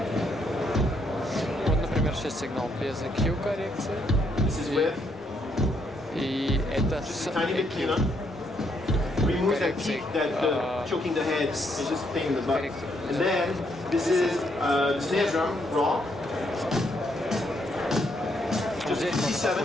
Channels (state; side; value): normal; both; correlation 0.74